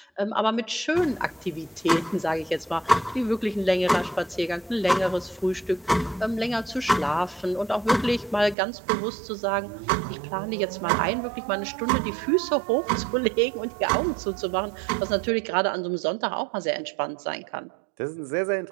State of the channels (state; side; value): drops out; left; at 8.6 s